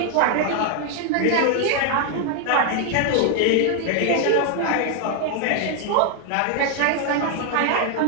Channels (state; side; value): different; both; correlation 0.00